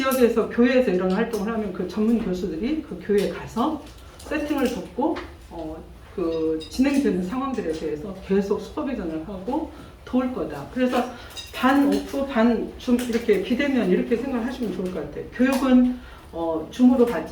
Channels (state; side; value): identical; both; correlation 1.00